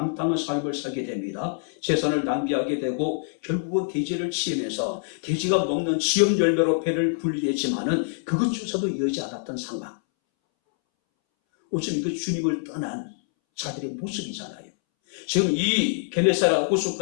삶을 살게 됩니다. 재산을 낭비하게 되고 결국은 돼지를 치면서 돼지가 먹는 지역 열매로 배를 불리했지만은 그것조차도 이어지 않았던 상황. 어쩌면 그 주님을 떠난 자들의 모습이잖아요. 지금 이 게네사렛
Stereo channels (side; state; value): right; silent; 62 dB below the other